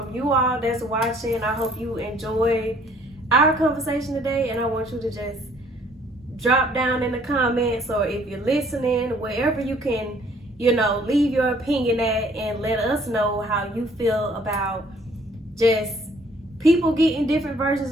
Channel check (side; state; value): both; normal; correlation 0.60